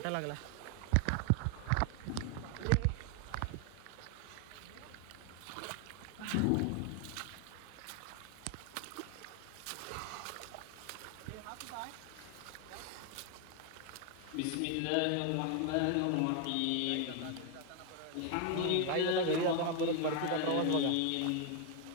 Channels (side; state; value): both; different; correlation 0.00